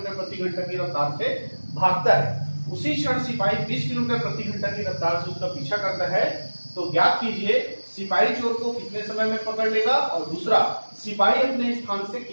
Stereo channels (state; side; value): inverted; both; correlation -1.00